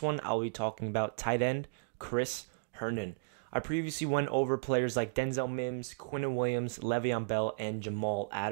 I'll be talking about tight end Chris Herndon. I previously went over players like Denzel Mims, Quinnen Williams, Le'Veon Bell, and Jamal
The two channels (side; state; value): left; quieter; 34.8 dB